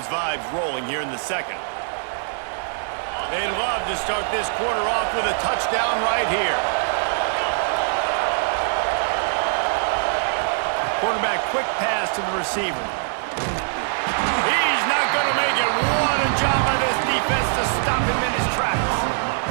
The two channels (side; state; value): left; silent; digital silence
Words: vibes rolling here in the second. They'd love to start this quarter off with a touchdown right here. Quarterback quick pass to the receiver. He's not going to make it. What a job by this defense to stop him in his tracks.